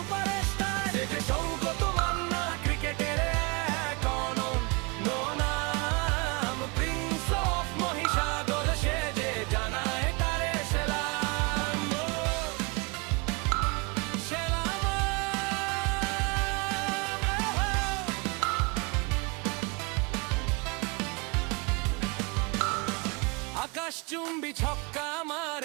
সে যে সৌগত মান্না, ক্রিকেটের এক অনন্য নাম। প্রিন্স অফ মহিষাদল সে যে জানায় তারে সেলাম। সেলাম। আকাশচুম্বী ছক্কা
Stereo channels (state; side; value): quieter; left; 29.5 dB